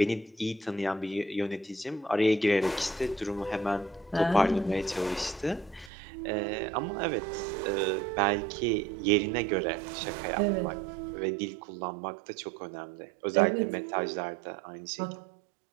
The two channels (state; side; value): drops out; left; at 5.9 s